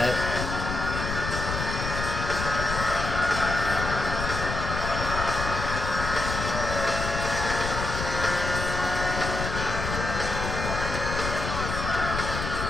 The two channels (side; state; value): left; noise; rumble, 4 dB below the sound